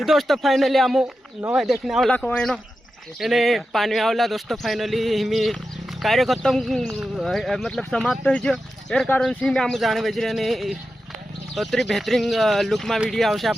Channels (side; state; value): both; normal; correlation 0.91